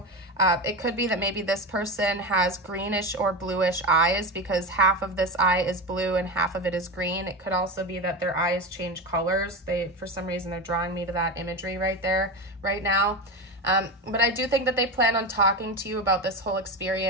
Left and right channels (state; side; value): normal; both; correlation 0.21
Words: It could be that maybe this person has greenish or bluish eyes because half of this eye is blue and half of it is green. It could also be that their eyes change colors. For some reason, they're drawing me to that imagery right there, right now. But I do think that they plan on talking to you about this whole